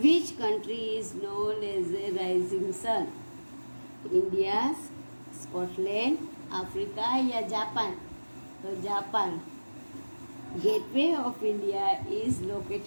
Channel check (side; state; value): both; inverted; correlation -1.00